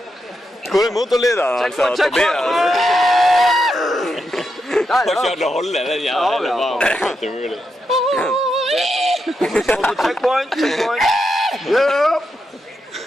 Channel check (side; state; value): both; normal; correlation 0.84